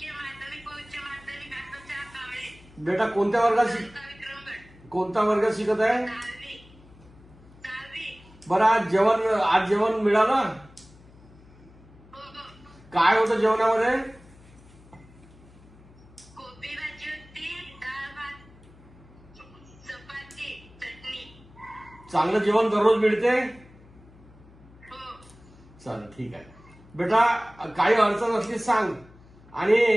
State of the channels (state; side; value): noise; left; hum, 24 dB below the sound